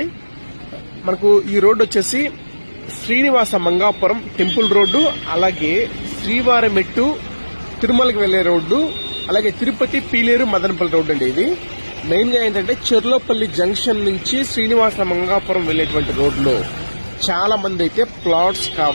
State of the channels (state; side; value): inverted; both; correlation -1.00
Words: మనకు ఈ రోడ్డు వచ్చేసి శ్రీనివాస మంగాపురం టెంపుల్ రోడ్డు, అలాగే శ్రీవారమెట్టు తిరుమలకి వెళ్లే రోడ్డు, అలాగే తిరుపతి పీలేరు మదనపల్లి రోడ్డు అండి. ఇది మెయిన్ గా ఏంటంటే చెర్లోపల్లి జంక్షన్ నుంచి శ్రీనివాస మంగాపురం వెళ్లేటువంటి రోడ్లో చాలా మంది అయితే ప్లాట్స్